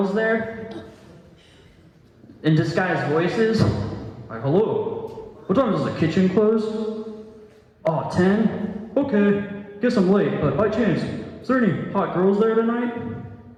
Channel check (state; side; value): identical; both; correlation 1.00